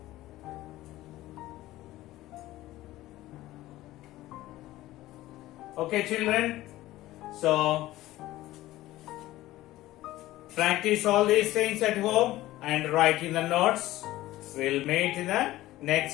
Okay, children. So practice all these things at home and write in the notes. We'll meet in the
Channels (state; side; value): quieter; right; 16.3 dB